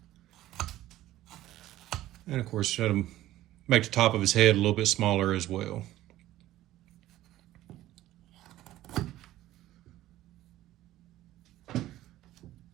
And of course, try to make the top of his head a little bit smaller as well.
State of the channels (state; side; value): quieter; left; 14.8 dB